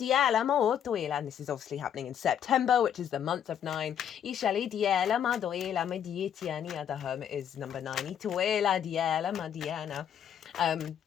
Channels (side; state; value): right; quieter; 9.2 dB